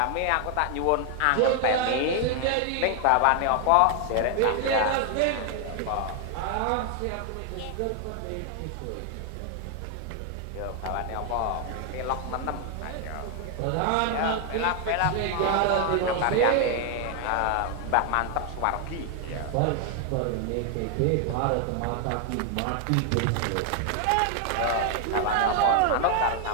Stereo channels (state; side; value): different; both; correlation 0.00